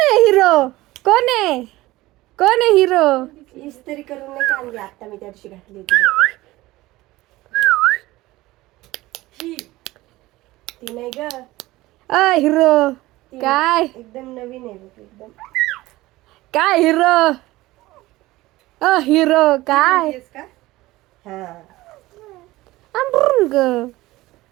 आहे हिरो? कोण आहे? कोण आहे हिरो? इस्त्री करून नाही का आणली आता मी त्या दिवशी घातली होती बघ. ती नाही ग. हिरो ती काय? एकदम नवीन आहे बघ एकदम. काय हिरो? हिरो काय? तेच का? हा अंबरुंग.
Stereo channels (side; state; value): left; quieter; 18.4 dB